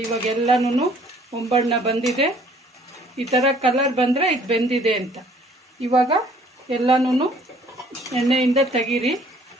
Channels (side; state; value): both; normal; correlation 0.58